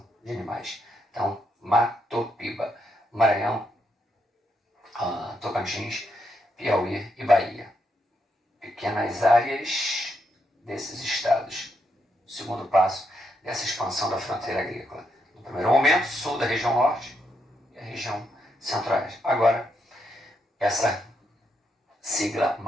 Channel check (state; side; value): normal; both; correlation 0.79